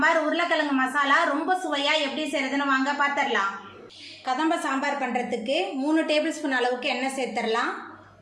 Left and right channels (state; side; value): identical; both; correlation 1.00